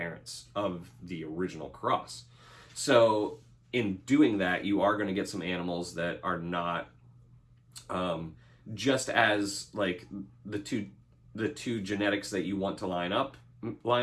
of the original cross. So in doing that, you are going to get some animals that are not just as like the two genetics that you want to line up.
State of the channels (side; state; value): both; identical; correlation 1.00